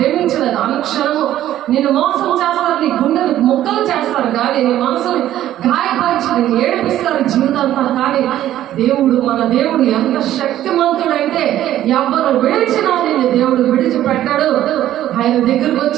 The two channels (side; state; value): left; quieter; 12.7 dB